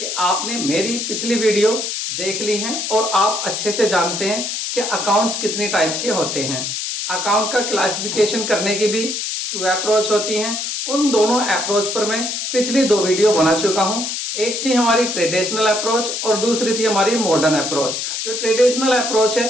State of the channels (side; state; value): left; noise; hiss, 3 dB below the sound